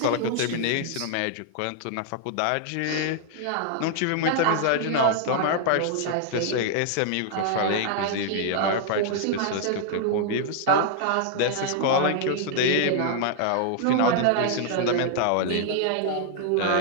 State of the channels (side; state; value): both; different; correlation -0.01